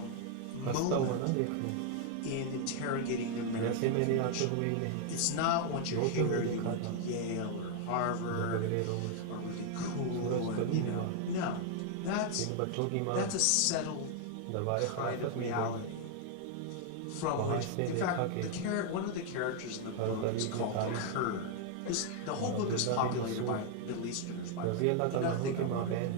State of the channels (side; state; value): both; different; correlation 0.00